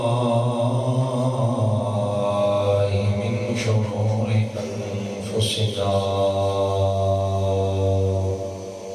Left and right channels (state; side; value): identical; both; correlation 1.00